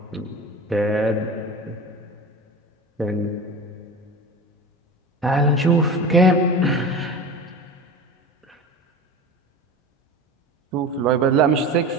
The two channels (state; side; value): normal; both; correlation 0.32